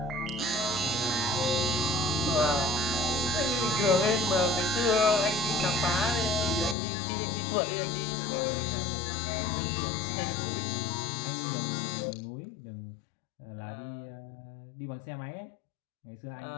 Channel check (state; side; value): drops out; right; at 6.8 s